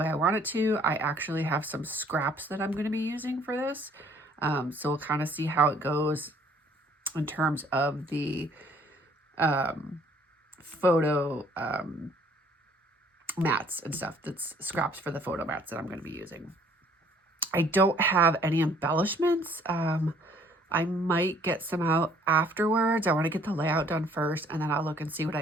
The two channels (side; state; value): both; normal; correlation 0.60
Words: I want it to. I actually have some scraps that I'm going to be using for this. So we'll kind of see how it goes in terms of the photo mats and stuff. That's scraps for the photo mats that I'm going to be using. I don't have any embellishments. I might get some out afterwards. I want to get the layout done first, and then I'll look and see what I